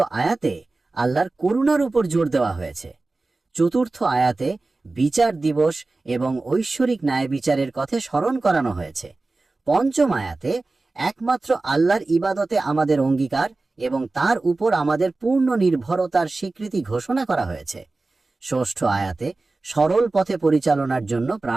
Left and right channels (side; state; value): left; quieter; 3.4 dB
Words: আয়াতে আল্লাহর করুণার উপর জোর দেওয়া হয়েছে। চতুর্থ আয়াতে বিচার দিবস এবং ঐশ্বরিক ন্যায় বিচারের কথা স্মরণ করানো হয়েছে। পঞ্চম আয়াতে একমাত্র আল্লাহর ইবাদতে আমাদের অঙ্গীকার এবং তার উপর আমাদের পূর্ণ নির্ভরতার স্বীকৃতি ঘোষণা করা হয়েছে। ষষ্ঠ আয়াতে সরল পথে পরিচালনার জন্য